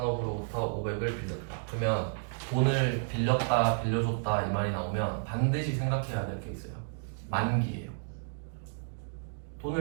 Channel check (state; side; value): silent; left; digital silence